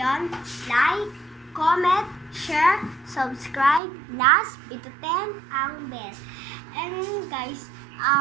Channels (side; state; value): left; drops out; at 3.8 s